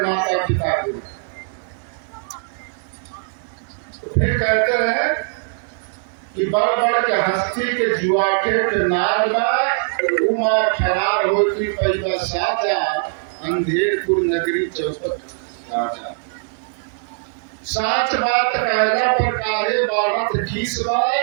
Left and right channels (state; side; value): silent; left; digital silence